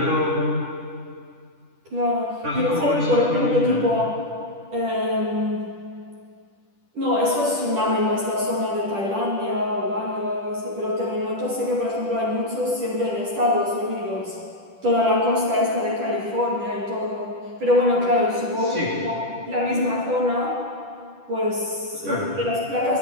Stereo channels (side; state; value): left; late; 10 ms